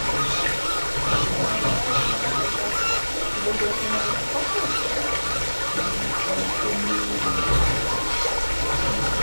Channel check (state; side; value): inverted; both; correlation -1.00